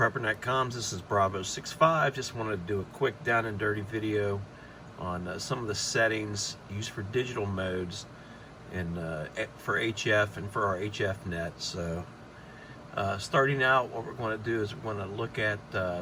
comms, this is Bravo65. Just wanted to do a quick down and dirty video on some of the settings used for digital modes and for HF and for our HF net. So starting out, what we're going to do is we're going to look at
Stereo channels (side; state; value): both; identical; correlation 1.00